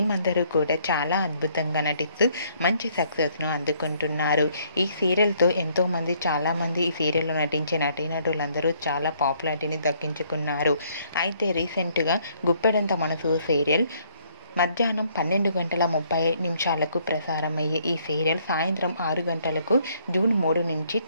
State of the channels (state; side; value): inverted; both; correlation -0.66